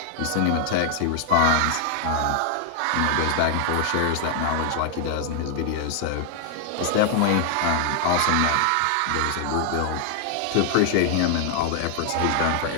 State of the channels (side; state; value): both; different; correlation 0.00